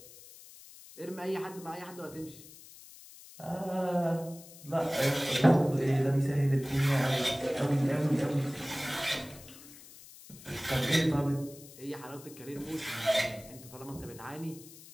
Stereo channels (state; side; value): noise; left; hiss, 19 dB below the sound